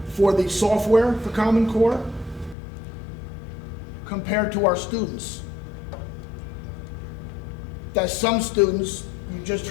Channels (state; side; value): drops out; right; at 2.6 s